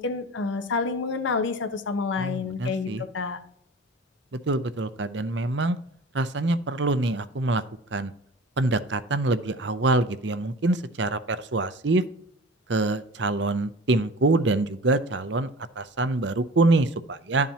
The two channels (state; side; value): normal; both; correlation 0.40